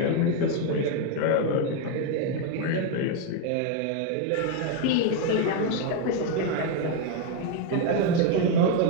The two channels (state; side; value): different; both; correlation 0.01